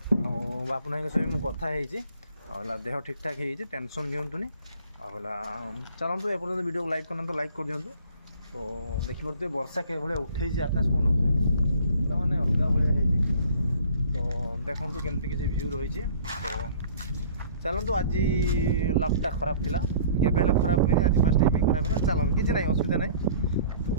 हो बापुनाई सहित मुझे कथा आला देह ठीक ठाक हो टेंशन दिंतुनि आला चलतु एपर्तंत वीडियो को लाइक करना तो लाइक कर दिंतु। तो देखिपे वर्षा के भाई उठे आकाश मन मैंने अलग भाया तो ଦେଖନ୍ତୁ କେମିତି କିଛି ଭ୍ୟୁ ରହିଛି। ତ ଚାଲନ୍ତୁ, ଆଜି ଲକ୍ଟା ଖରାପ ଥିଲା, କେବେ ହେଲେ ଖରାପ ହୁଏନି, ଆଜି ଫାର୍ଷ୍ଟ ଟାଇମ୍ ଖରାପ ହେଲା। ଚାଲନ୍ତୁ, କିଛି ନାହିଁ, ଅସୁବିଧା ନାହିଁ। ତ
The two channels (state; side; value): inverted; both; correlation -0.51